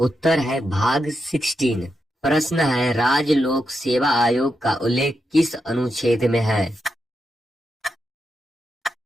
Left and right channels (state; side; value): normal; both; correlation 0.86